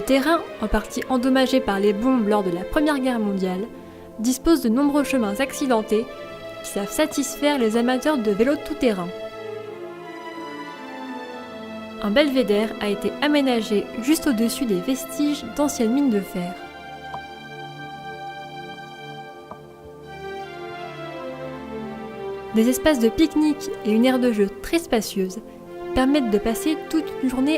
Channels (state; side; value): identical; both; correlation 1.00